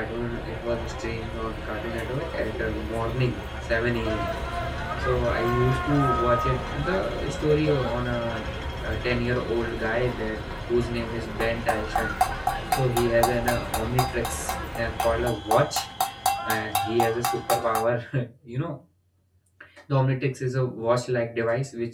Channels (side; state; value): both; identical; correlation 1.00